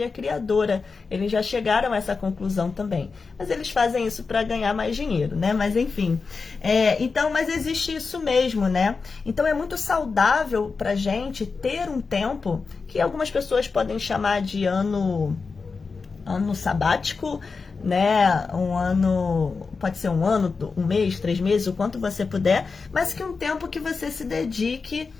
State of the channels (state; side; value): quieter; right; 4.7 dB